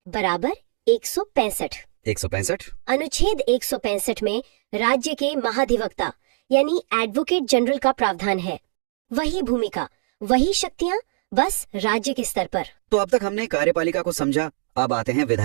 बराबर 165। 165। अनुच्छेद 165 में राज्य के महाधिवक्ता यानी एडवोकेट जनरल का प्रावधान है। वही भूमिका, वही शक्तियाँ, बस राज्य के स्तर पर। तो अब तक हमने कार्यपालिका को समझा, अब आते हैं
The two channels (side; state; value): left; silent; digital silence